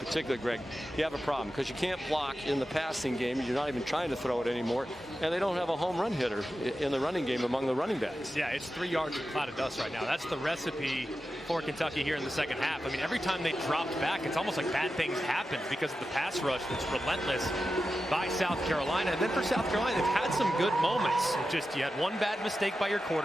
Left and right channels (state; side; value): normal; both; correlation 0.92